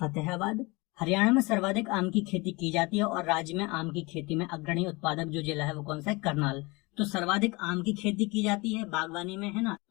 हरियाणा में सर्वाधिक आम की खेती की जाती है और राज्य में आम की खेती में अग्रणी उत्पादक जो जिला है वो कौन सा है? करनाल। तो सर्वाधिक आम की खेती की जाती है बागवानी में, है ना,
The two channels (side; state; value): right; quieter; 25.3 dB